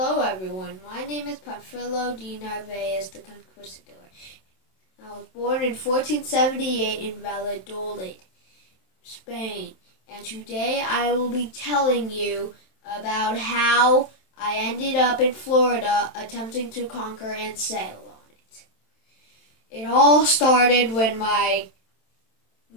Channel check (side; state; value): right; late; 27 ms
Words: everyone, my name is Panfilo de Narvaez the Conquistador. I was born in 1478 in Valladolid, Spain, and today I will be telling you about how I ended up in Florida attempting to conquer and sail on it. It all started when my